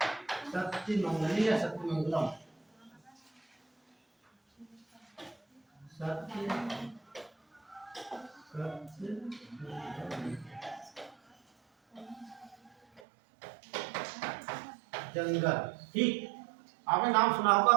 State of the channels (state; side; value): drops out; left; at 13.0 s